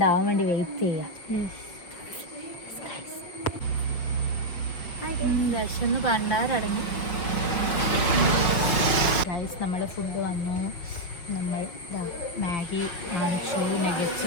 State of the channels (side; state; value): right; late; 5.7 ms